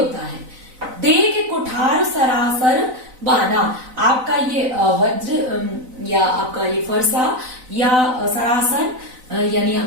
है। देख कुठार सरासर बाना, आपका ये वज्र या आपका ये फरसा या सरासर यानी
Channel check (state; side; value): late; left; 4.0 ms